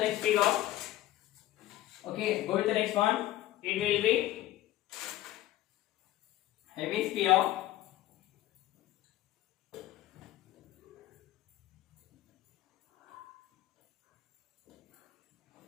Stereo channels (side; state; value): right; quieter; 14.9 dB